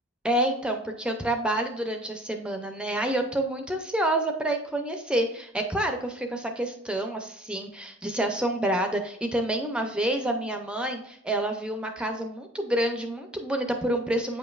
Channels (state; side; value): normal; both; correlation 0.50